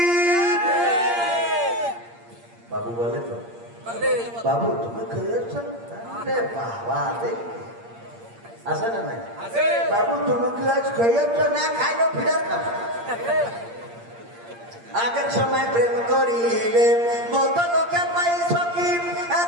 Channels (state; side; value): late; left; 8.6 ms